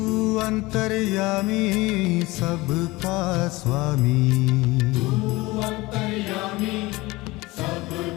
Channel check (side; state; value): right; quieter; 21.2 dB